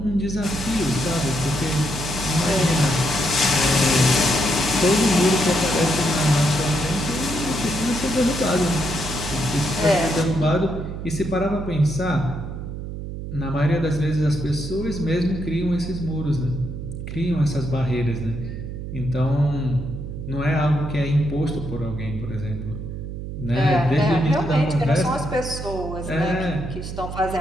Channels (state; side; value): noise; right; hum, 7 dB below the sound